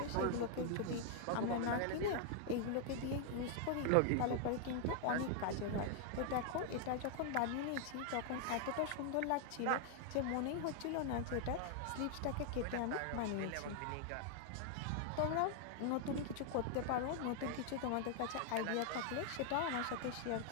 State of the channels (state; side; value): different; both; correlation 0.00